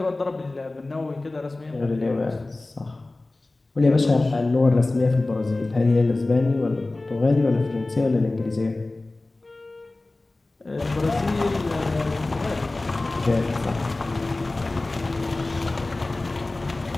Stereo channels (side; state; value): right; quieter; 3.0 dB